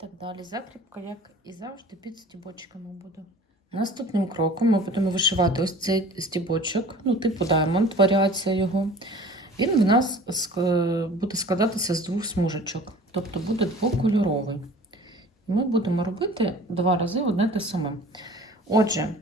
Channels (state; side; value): normal; both; correlation 0.44